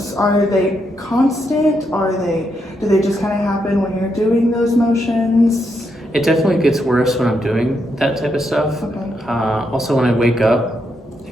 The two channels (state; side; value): normal; both; correlation 0.80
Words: are they constant? Do they just kind of happen when you're doing those motions? It definitely gets worse when I'm doing that type of stuff. Okay. Also, when I wake up,